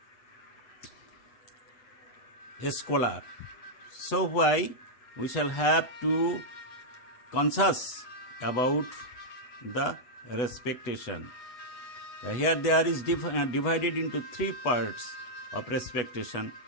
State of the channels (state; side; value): late; right; 8.1 ms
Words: a scholar. So why we shall have to conscious about the respectation. Here there is divided into three parts of respectation.